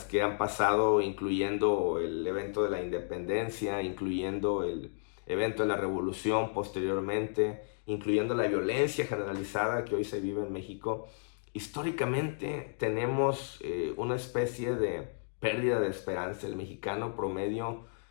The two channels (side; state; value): right; silent; digital silence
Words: que han pasado, incluyendo el evento de la independencia, incluyendo el evento de la revolución posteriormente, incluyendo la violencia generalizada que hoy se vive en México. Históricamente tenemos una especie de pérdida de esperanza. El mexicano promedio